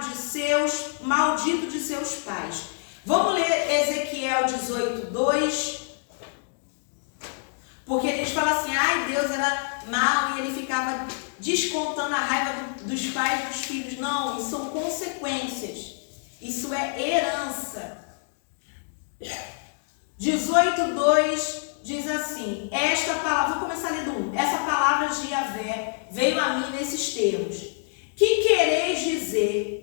de maldito de seus pais. Vamos ler Ezequiel 18:2. Porque a gente fala assim, Deus era mau e ele ficava descontando a raiva dos pais dos filhos. Não, isso são consequências. Isso é herança. 18:2 diz assim, esta palavra, vou começar lendo 1. Essa palavra de Yahvé veio a mim nesses termos. Que quereis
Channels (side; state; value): right; silent; digital silence